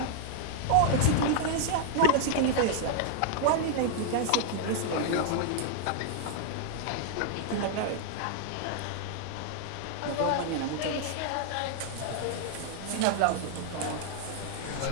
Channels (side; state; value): both; different; correlation 0.00